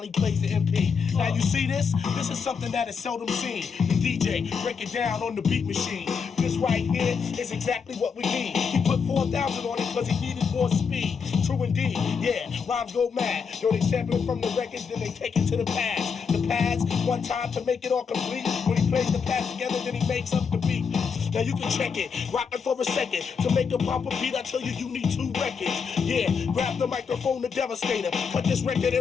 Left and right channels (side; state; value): right; quieter; 5.9 dB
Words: he plays the MP. Now you see this? This is something that is seldom seen. The DJ break it down on the beat machine. This right here is exactly what we need. He put 4,000 on it because he needed more speed. True indeed, yeah, rhymes go mad. Yo, they sample it from the records, then they take it to the pads. The pads, one time to make it all complete. When he plays the pads together, then he makes up the beat. Now you can check it, rock it for a second. To make a proper beat, I tell you, you need 2 records. Yeah, grab the microphone, the devastator. Cut this record